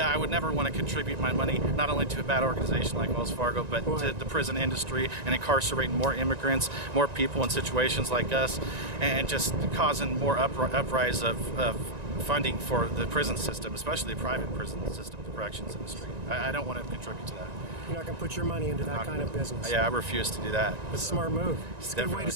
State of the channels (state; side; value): late; left; 1.9 ms